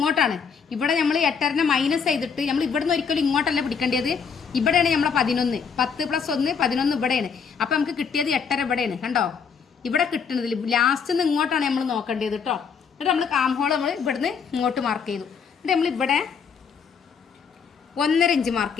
ഇവിടെ നമ്മൾ 8.5 മൈനസ് ചെയ്തിട്ട് നമ്മൾ ഇവിടുന്ന് ഒരിക്കലും ഇങ്ങോട്ടല്ല പിടിക്കേണ്ടത്. ഇവിടെയാണ് നമ്മളെ 11. 10 + 1 11 ഇവിടെയാണ്. അപ്പം നമുക്ക് കിട്ടിയത് 8.5 ഇവിടെയാണ്. കണ്ടോ, ഇവിടെ കിട്ടുന്നതിൽ ലാസ്റ്റ് നിന്ന് ഇങ്ങോട്ടാണ് നമ്മൾ നോക്കേണ്ടത് കേട്ടോ. എന്നിട്ട് നമ്മൾ ആം ഹോൾ നമ്മൾ ഇവിടുന്ന് ഇങ്ങോട്ട് മാർക്ക് ചെയ്തു. എന്നിട്ട് നമ്മൾ ഇവിടെ 1.5 ഇഞ്ച് മാർക്ക്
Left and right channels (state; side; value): quieter; right; 6.3 dB